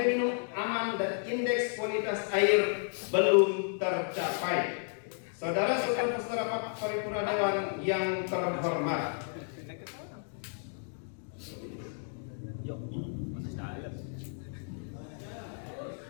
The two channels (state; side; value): silent; right; 56 dB below the other